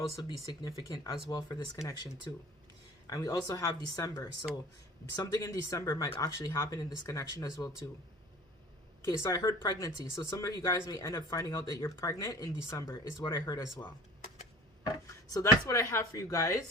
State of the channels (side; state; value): both; normal; correlation 0.44